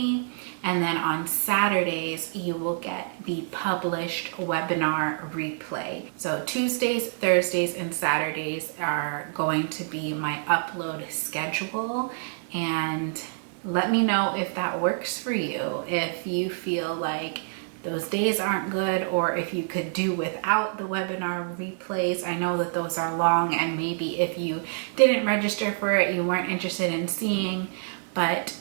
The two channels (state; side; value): silent; left; 60 dB below the other